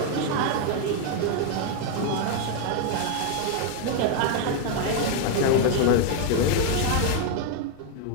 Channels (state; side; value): different; both; correlation 0.00